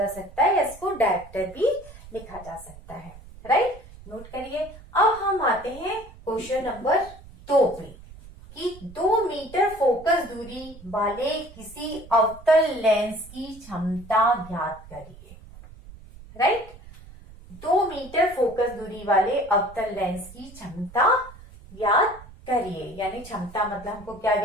सकता है, इसको डायप्टर भी लिखा जा सकता है। राइट, नोट करिए। अब हम आते हैं क्वेश्चन नंबर 2 पे, कि 2 मीटर फोकस दूरी वाले किसी अवतल लेंस की क्षमता ज्ञात करिए। राइट, 2 मीटर फोकस दूरी वाले अवतल लेंस की क्षमता ज्ञात करिए, यानी क्षमता मतलब हमको क्या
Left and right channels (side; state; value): right; noise; rumble, 19 dB below the sound